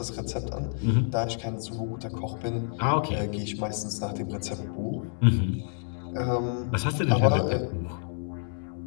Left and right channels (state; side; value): silent; right; digital silence